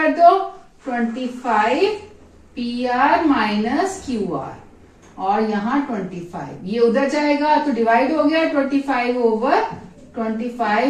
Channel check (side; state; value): both; identical; correlation 1.00